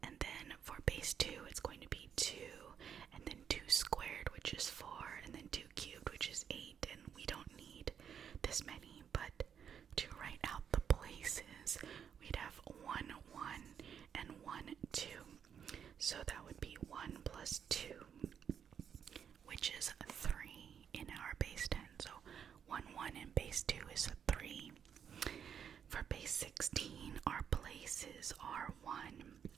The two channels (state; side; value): quieter; left; 8.0 dB